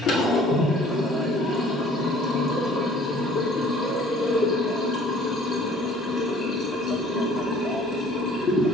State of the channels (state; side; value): normal; both; correlation 0.53